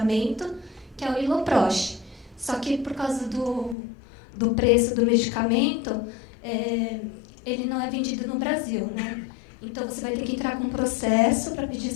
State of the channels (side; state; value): right; drops out; at 3.8 s